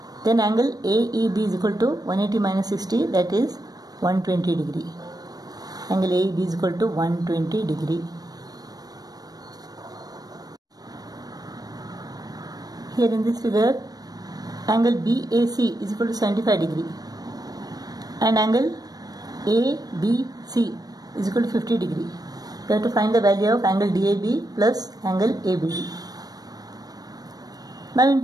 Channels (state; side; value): late; left; 0.19 ms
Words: then angle AEB is equal to 180 minus 60, that is 120 degree. Angle AEB is equal to 120 degree. Here in this figure, angle BAC is equal to 75 degree and angle ABC is equal to 50 degree. We have to find the value of angle DAB plus angle ABD. Now in